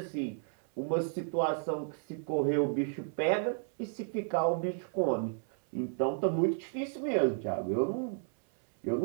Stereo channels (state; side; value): silent; left; 56 dB below the other